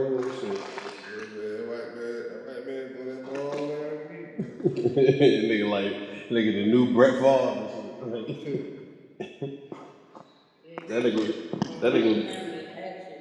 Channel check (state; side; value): identical; both; correlation 1.00